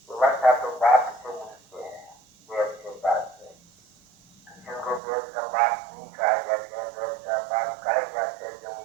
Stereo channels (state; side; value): drops out; left; at 5.0 s